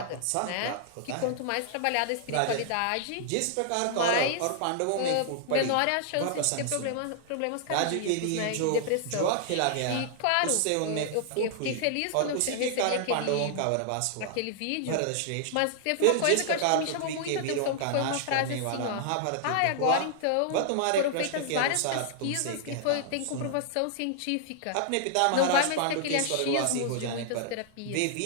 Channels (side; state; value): both; different; correlation -0.01